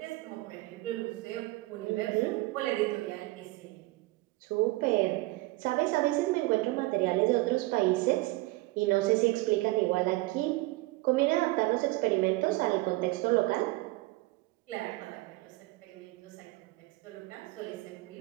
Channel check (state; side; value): quieter; left; 20.8 dB